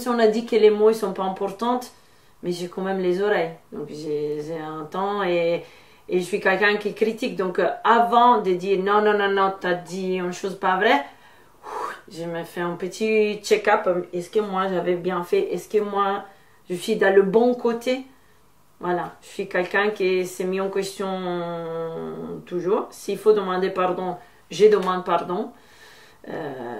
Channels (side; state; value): both; identical; correlation 1.00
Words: on a dit que les mots ne sont pas importants, mais j'ai quand même les oreilles. Donc j'ai un temps et je suis quelqu'un qui critique. Donc avant de dire non, non, non, non, tu as dit une chose pas vraie, je me fais un petit check-up. Est-ce que moi j'avais bien fait? Est-ce que moi je suis dans le bon côté? Voilà, je suis quelqu'un qui s'est mis en question toujours. S'il faut demander pardon, je demande pardon.